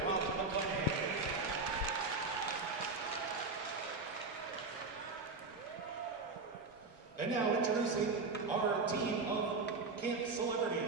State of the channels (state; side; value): quieter; left; 3.9 dB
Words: Rob McClanahan. And now introducing our team of camp